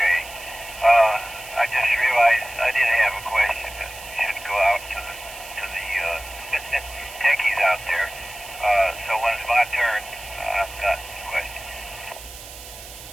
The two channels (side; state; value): right; noise; hiss, 15 dB below the sound